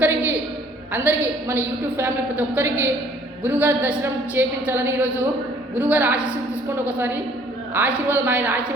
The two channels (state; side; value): normal; both; correlation 0.58